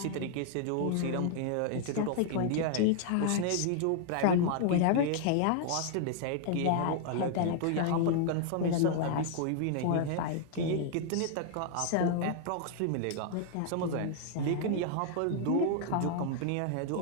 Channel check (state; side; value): different; both; correlation 0.00